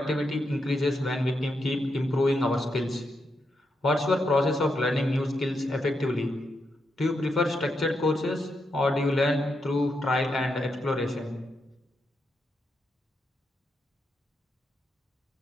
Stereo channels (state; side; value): normal; both; correlation 0.83